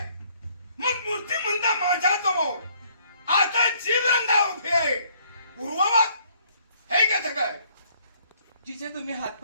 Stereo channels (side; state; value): both; inverted; correlation -0.64